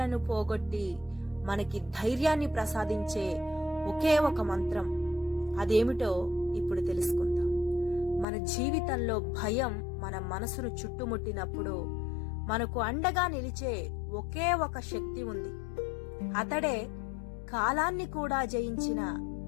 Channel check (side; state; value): right; drops out; at 8.2 s